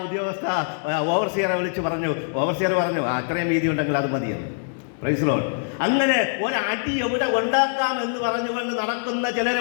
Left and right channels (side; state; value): right; silent; 62 dB below the other